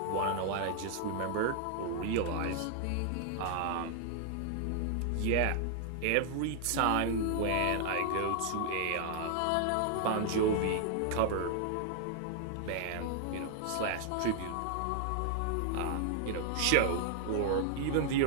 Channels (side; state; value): both; different; correlation 0.00